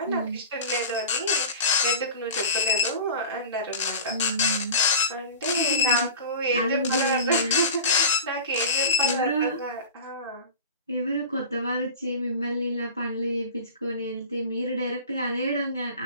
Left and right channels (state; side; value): inverted; both; correlation -0.33